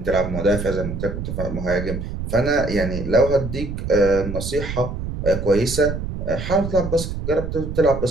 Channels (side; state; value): right; noise; rumble, 6 dB below the sound